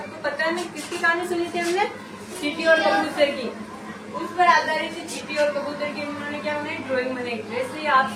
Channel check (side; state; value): both; identical; correlation 1.00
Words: पता है ना किसकी कहानी सुनी थी हमने? चींटी और कबूतर की। उस पर आधारित थी चींटी और कबूतर की। उन्होंने क्या बनाई? ड्राइंग बनाई। वैसे ही आप